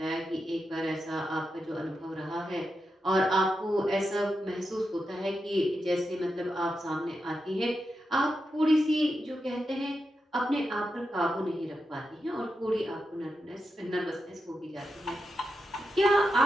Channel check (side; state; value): both; normal; correlation 0.88